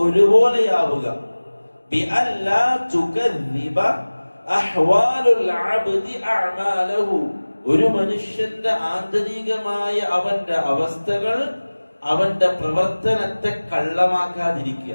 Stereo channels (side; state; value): both; inverted; correlation -1.00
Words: ഒരുപോലെയാവുക. ബിഅല്ലാ തുകദ്ദിബ അഹ്വാലുൽ അബ്ദി അഅമാലഹു, ഒരു മനുഷ്യന്റെ ആന്തരികമായ അവന്റെ അവസ്ഥകൾ അവന്റെ പ്രവർത്തനത്തെ കള്ളമാക്കാതിരിക്കുക.